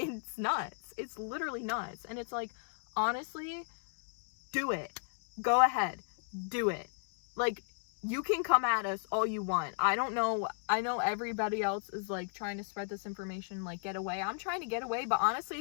nuts. It's literally nuts. And it's like, honestly, do it. Go ahead, do it. Like, you can come at us all you want. I don't know. I know everybody else is like trying to spread this information, like get away. I'm trying to get away, but honestly,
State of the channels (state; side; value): silent; right; digital silence